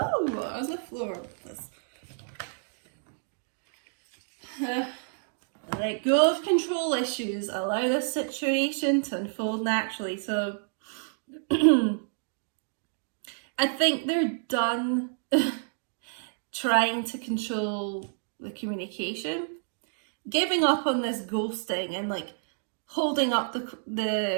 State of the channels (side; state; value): left; silent; digital silence